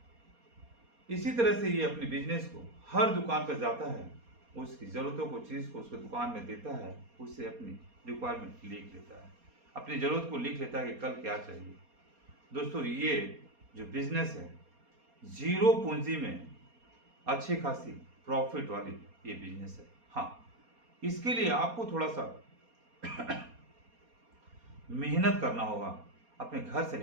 इसी तरह से ये अपने बिजनेस को हर दुकान पर जाता है, उसकी ज़रूरतों को, चीज़ को उसको दुकान में देता है, उससे अपनी रिक्वायरमेंट लिख लेता है, अपनी ज़रूरत को लिख लेता है कि कल क्या चाहिए। दोस्तों, ये जो बिजनेस है, जीरो पूंजी में अच्छी खासी प्रॉफिट वाली ये बिजनेस है। हाँ, इसके लिए आपको थोड़ा सा मेहनत करना होगा। अपने घर से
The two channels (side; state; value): left; late; 4.2 ms